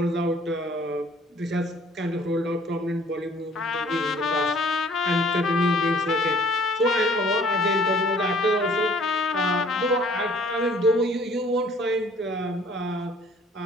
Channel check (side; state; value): both; normal; correlation 0.55